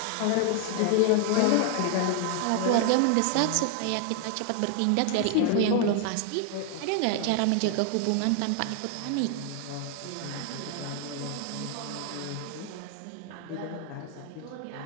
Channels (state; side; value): different; both; correlation 0.00